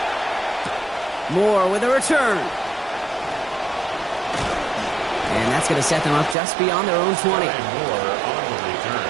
Moore with a return. And that's going to set them up just beyond their own 20. Moore on the return.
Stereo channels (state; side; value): drops out; left; at 6.4 s